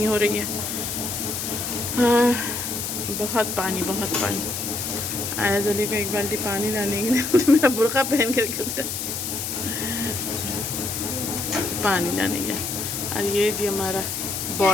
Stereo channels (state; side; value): noise; left; hiss, 4 dB below the sound